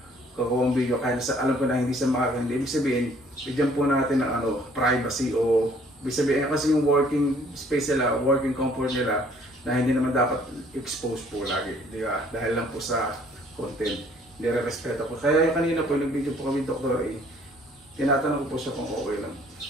kukuha ang video. Kaya alam ko na hindi sa makakandi. Ibig sabihin, bigyan po natin ng privacy o ibig sabihin kasi yung working space nila, working comfort nila, na hindi naman dapat expose po lagi, di ba? Dahil lang po sa content, nire-respeto po. Kaya yung kanina po, nag-video po kami Dr. E, tinatanong ko po siya kung okay lang.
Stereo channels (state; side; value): normal; both; correlation 0.59